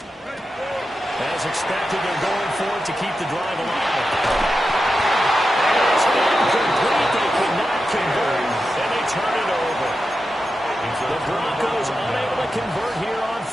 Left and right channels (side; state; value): both; normal; correlation 0.90